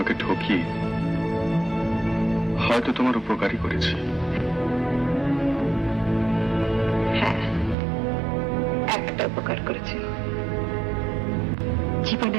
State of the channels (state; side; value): drops out; left; at 7.8 s